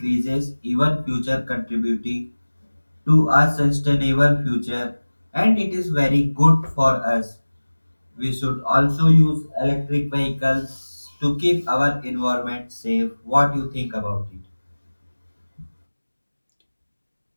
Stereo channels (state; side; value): inverted; both; correlation -1.00